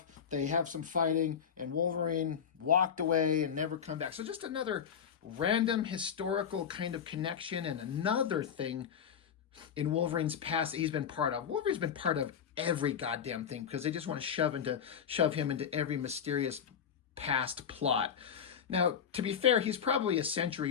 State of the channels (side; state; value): right; quieter; 7.7 dB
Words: They have some fighting, and Wolverine walked away and never come back. So just another random historical kind of connection and another thing in Wolverine's past that he's been part of. Wolverine's been part of every goddamn thing because they just want to shove him into every mysterious past plot. Now, to be fair, he's probably a